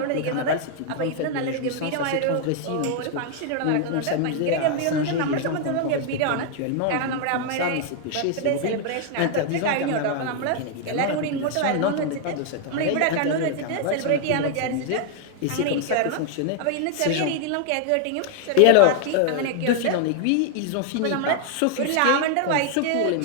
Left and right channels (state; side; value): different; both; correlation 0.00